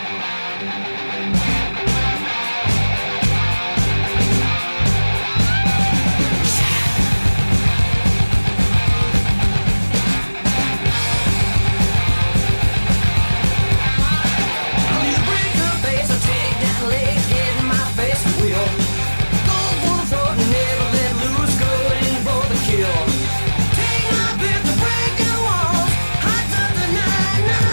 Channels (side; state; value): both; inverted; correlation -1.00